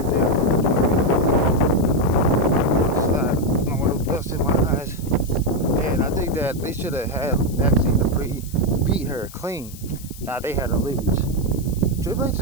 there. In my eyes, and I think that they should have had Maxine dupi beat her clean. Now they had her lose. Triple H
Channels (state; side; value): noise; left; hiss, 18 dB below the sound